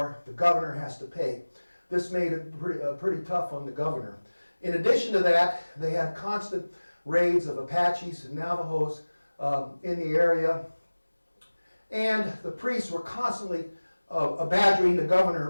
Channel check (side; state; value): both; inverted; correlation -1.00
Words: the governor has to pay. This made it pretty tough on the governor. In addition to that, they had constant raids of Apaches and Navajos in the area. And the priests were constantly badgering the governor